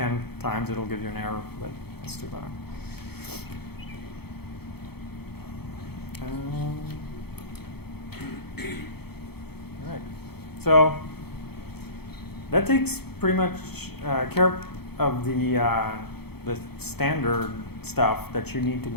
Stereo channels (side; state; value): right; late; 0.96 ms